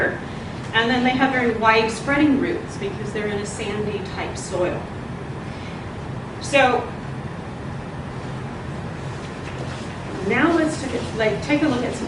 And then they have very wide spreading roots because they're in a sandy type soil. So now let's take a look at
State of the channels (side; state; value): both; identical; correlation 1.00